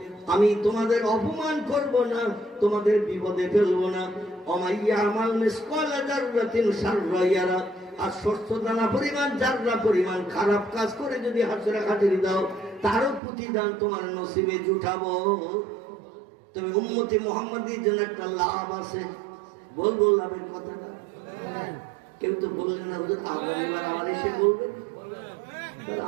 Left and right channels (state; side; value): drops out; left; at 13.2 s